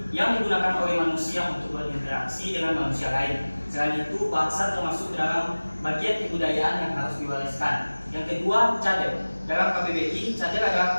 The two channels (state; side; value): inverted; both; correlation -1.00